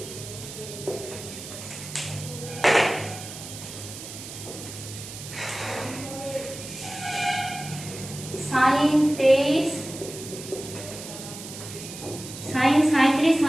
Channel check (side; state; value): right; noise; hiss, 11 dB below the sound